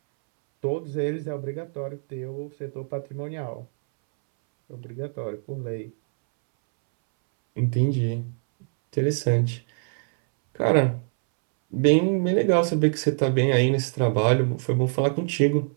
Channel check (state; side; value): silent; left; 62 dB below the other